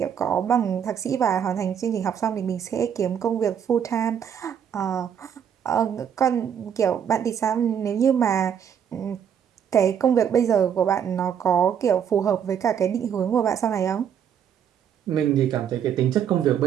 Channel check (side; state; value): left; quieter; 8.4 dB